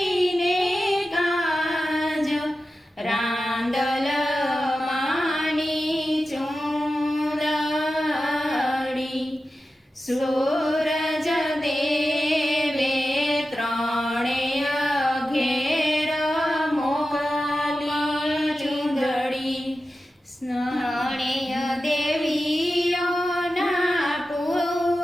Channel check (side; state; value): both; normal; correlation 0.93